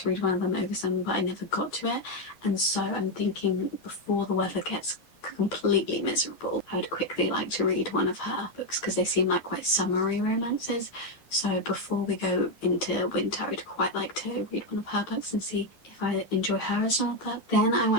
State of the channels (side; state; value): right; late; 11 ms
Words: read one of them over summer, but I never got to it, and so I'm thinking before the weather gets completely miserable, I would quickly like to read one of her books because they seem like quite summery romances. So before we go into winter, I'd quite like to read one of her books and see if I enjoy her as an author. Then I